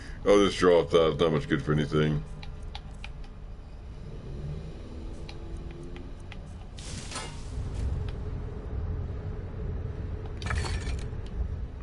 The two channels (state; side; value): identical; both; correlation 1.00